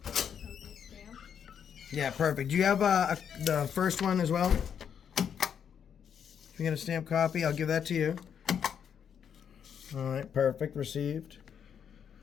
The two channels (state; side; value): quieter; right; 8.0 dB